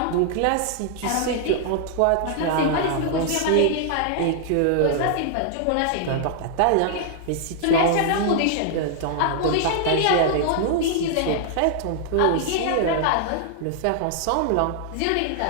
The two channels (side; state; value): both; different; correlation -0.01